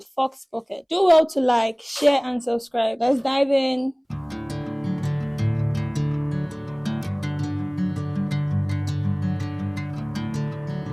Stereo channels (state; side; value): identical; both; correlation 1.00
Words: fox pocket. Do well to like, share and subscribe. Let's dive in.